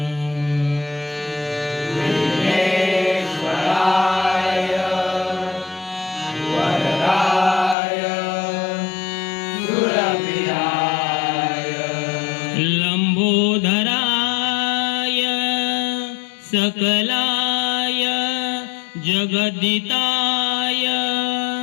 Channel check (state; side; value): drops out; right; at 7.8 s